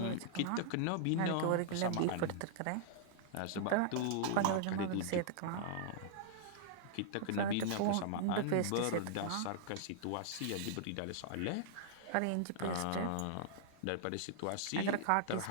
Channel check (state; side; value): different; both; correlation -0.01